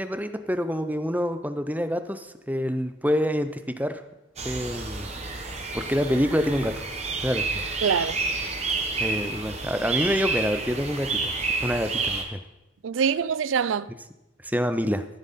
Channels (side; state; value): both; normal; correlation 0.57